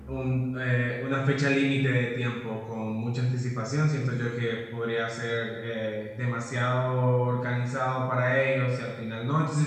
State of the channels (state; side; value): identical; both; correlation 1.00